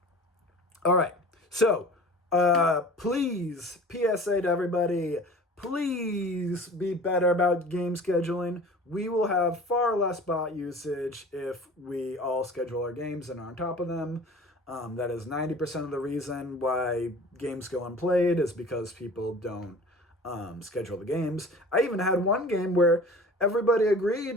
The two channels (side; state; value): both; normal; correlation 0.42